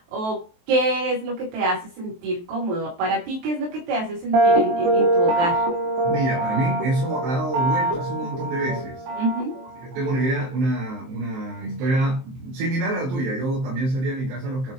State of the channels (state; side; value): late; left; 23 ms